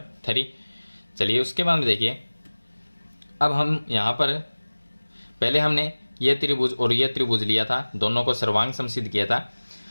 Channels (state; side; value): inverted; both; correlation -1.00